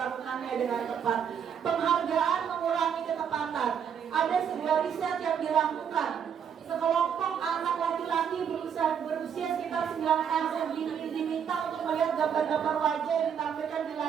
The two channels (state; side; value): quieter; left; 7.8 dB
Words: dengan tepat. Penghargaan mengurangi ketepatan. Ada sebuah riset yang dilakukan. Sekelompok anak laki-laki berusia sekitar 9 tahun diminta untuk melihat gambar-gambar wajah yang ditampilkan